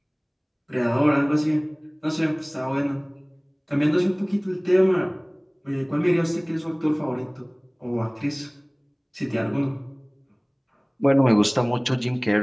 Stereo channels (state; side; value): identical; both; correlation 1.00